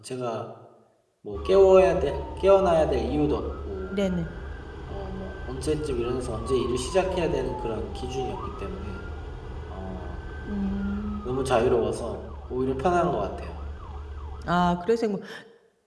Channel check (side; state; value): both; identical; correlation 1.00